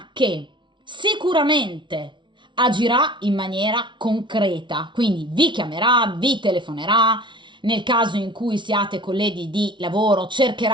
che sicuramente agirà in maniera concreta, quindi vi chiamerà, vi telefonerà, nel caso in cui siate colleghi di lavoro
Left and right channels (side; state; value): left; late; 0.24 ms